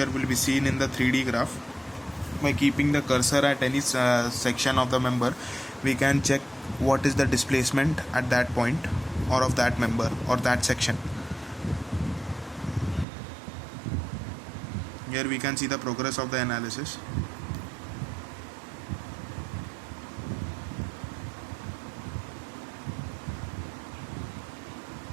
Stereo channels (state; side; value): drops out; left; at 13.1 s